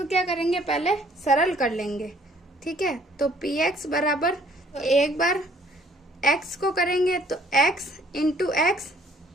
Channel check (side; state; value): both; normal; correlation 0.60